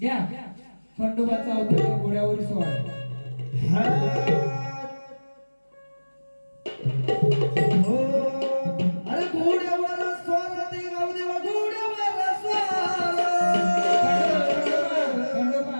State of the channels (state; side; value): inverted; both; correlation -1.00